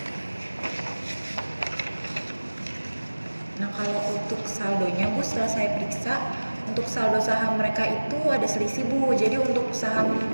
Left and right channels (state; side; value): inverted; both; correlation -1.00